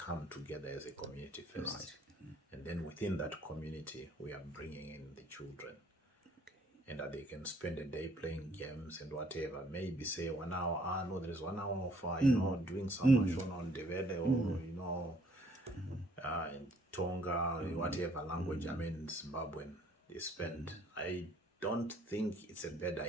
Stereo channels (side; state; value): both; normal; correlation 0.62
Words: together as a community first. Right. And then within that community, we are bringing in the children. And that they can spend a day playing games and whatever. Maybe say 1 hour, no, there is 1 hour of, you know, doing some Shona on Devele or, you know, in Tonga, whatever language, I mean, Zimbabwean, they spend. I don't think it's a bad